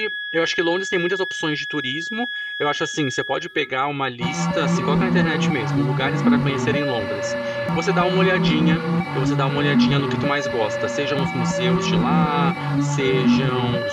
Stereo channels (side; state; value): both; identical; correlation 1.00